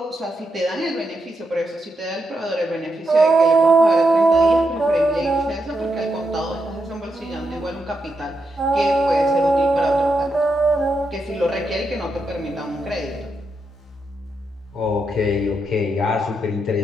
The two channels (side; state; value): both; normal; correlation 0.83